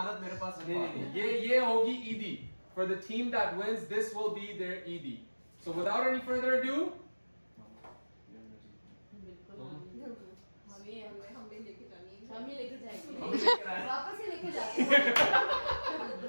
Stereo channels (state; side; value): inverted; both; correlation -1.00